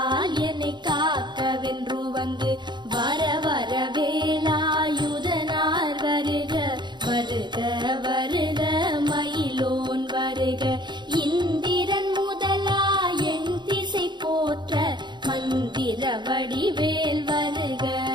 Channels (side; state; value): left; late; 0.22 ms